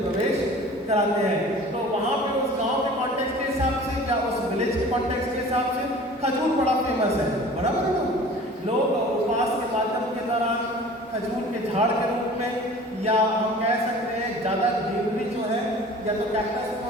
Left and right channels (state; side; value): normal; both; correlation 0.44